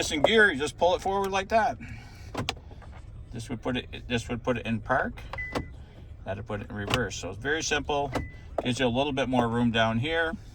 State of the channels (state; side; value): identical; both; correlation 1.00